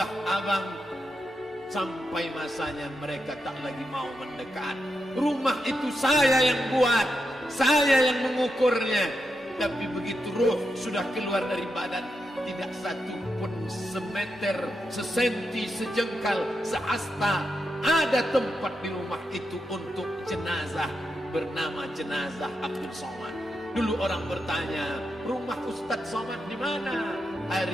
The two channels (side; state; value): both; normal; correlation 0.86